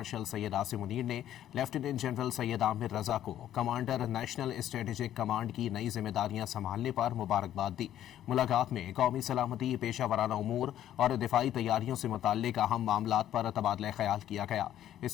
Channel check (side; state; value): right; quieter; 11.7 dB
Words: सैयद आसिम मुनीर ने लेफ्टिनेंट जनरल सैयद आमिर रजा को कमांडर नेशनल स्ट्रेटेजिक कमांड की नई जिम्मेदारियां संभालने पर मुबारकबाद दी। मुलाकात में कौमी सलामती, पेशा वराना उमूर और दिफाई तैयारियों से मुताल्लिक अहम मामलात पर तबादला ख्याल किया गया।